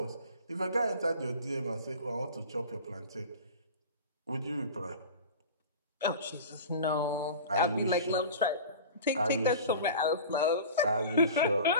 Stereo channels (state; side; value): inverted; both; correlation -0.36